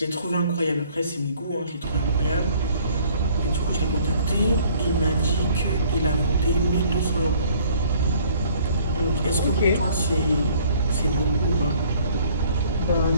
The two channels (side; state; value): both; inverted; correlation -0.57